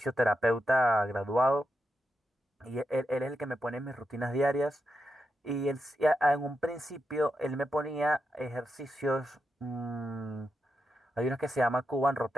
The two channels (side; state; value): both; normal; correlation 0.86